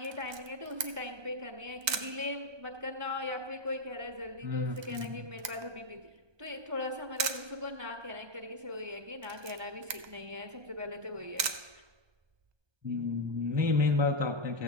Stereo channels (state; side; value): late; left; 1.2 ms